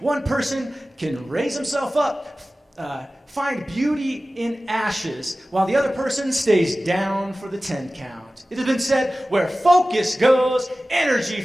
One person can raise himself up, find beauty in ashes, while the other person stays down for the 10 count. It has been said, where focus goes, energy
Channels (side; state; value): both; normal; correlation 0.96